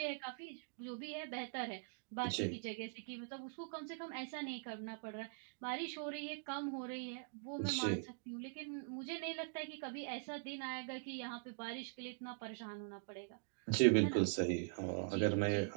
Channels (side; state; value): left; silent; digital silence